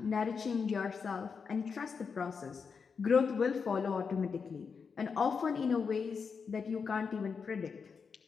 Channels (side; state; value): right; quieter; 5.7 dB